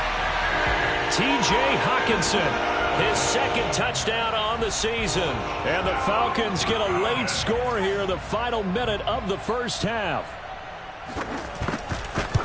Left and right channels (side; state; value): both; identical; correlation 1.00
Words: T.J. Hawkinson, his 2nd touchdown on the season. And the Falcons get a late score here in the final minute of the 1st half.